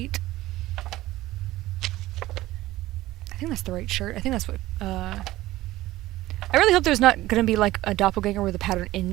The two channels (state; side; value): quieter; left; 16.7 dB